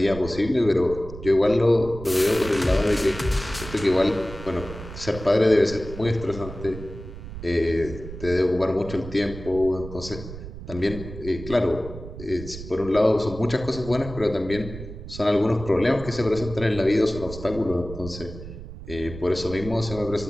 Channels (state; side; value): noise; right; rumble, 12 dB below the sound